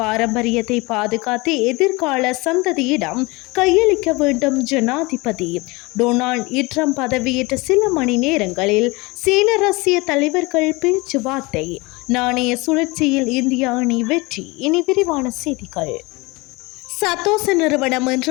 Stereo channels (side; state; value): right; quieter; 24.4 dB